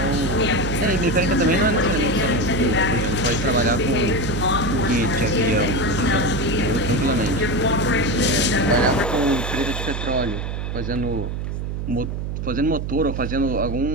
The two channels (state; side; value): noise; right; hum, 4 dB below the sound